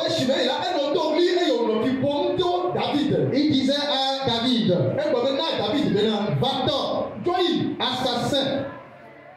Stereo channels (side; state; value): both; identical; correlation 1.00